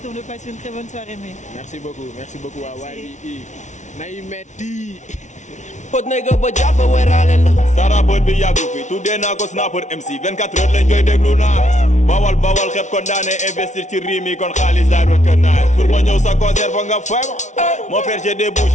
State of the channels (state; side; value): late; right; 0.35 ms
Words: de passer une très bonne soirée. Merci beaucoup waa YBE nay metti Hot nigga ba jàppa weeraale la. Sara bët bi yàggu fi tuddee naa ko snapper MC 24 heures lañ koy déglu naa bawal xeb kon daane investir ci riim yi kon xaalis daay doon kër naa pour ma ñëw sa concert foog nga fay ma mon frère j'ai des bouches